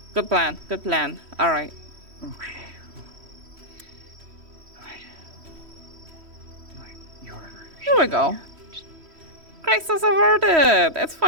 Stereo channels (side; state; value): left; late; 3.1 ms